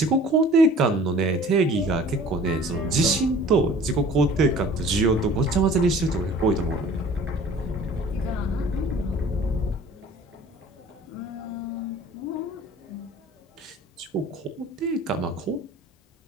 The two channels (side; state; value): both; normal; correlation 0.48